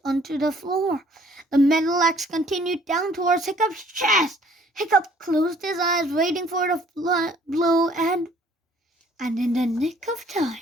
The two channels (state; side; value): normal; both; correlation 0.58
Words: onto the floor. The metal axe continued down towards Hiccup's chest. Hiccup closed his eyes, waiting for the blow, and in the nick of time,